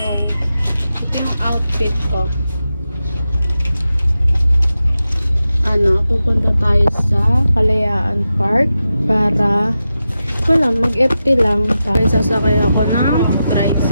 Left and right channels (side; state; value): both; inverted; correlation -0.91